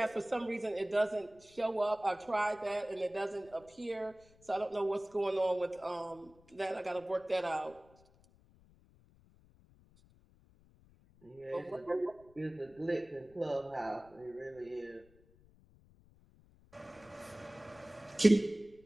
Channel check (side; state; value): left; noise; rumble, 27 dB below the sound